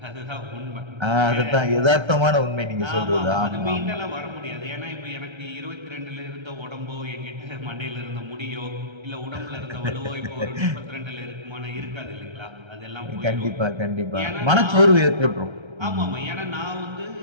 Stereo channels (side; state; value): left; late; 1.3 ms